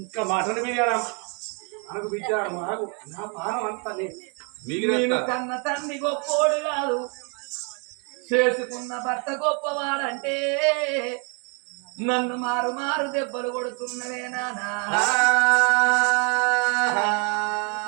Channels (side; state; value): left; quieter; 36.4 dB